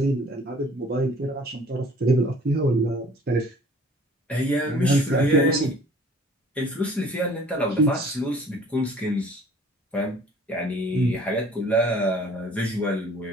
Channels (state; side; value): normal; both; correlation 0.52